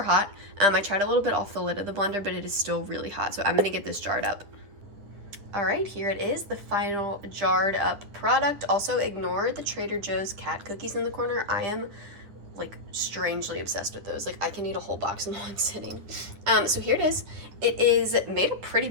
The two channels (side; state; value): left; late; 9.7 ms